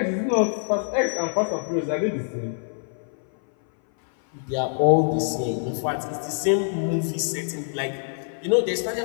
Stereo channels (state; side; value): silent; right; 59 dB below the other